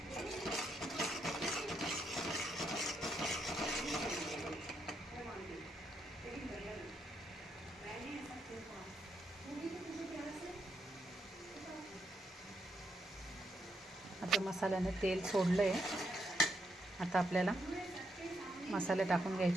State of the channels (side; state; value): both; normal; correlation 0.79